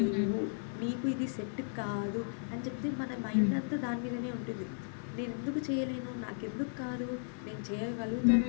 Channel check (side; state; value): right; silent; 54 dB below the other